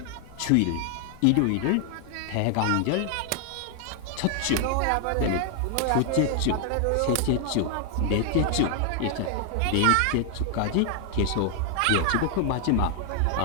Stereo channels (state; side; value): different; both; correlation 0.00